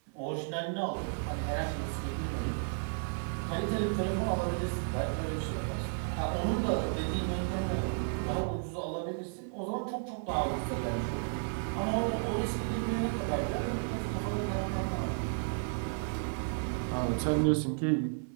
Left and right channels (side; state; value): left; silent; 56 dB below the other